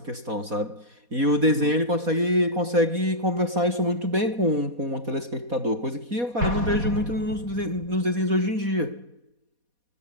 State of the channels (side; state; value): left; late; 4.2 ms